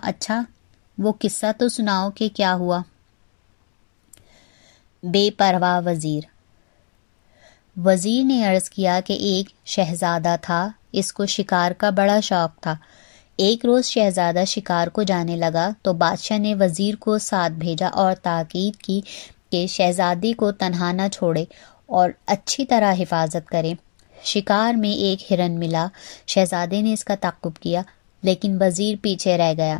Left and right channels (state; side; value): silent; right; digital silence